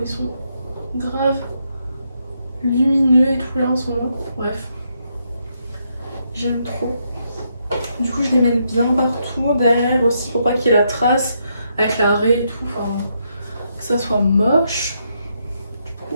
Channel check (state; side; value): inverted; both; correlation -0.78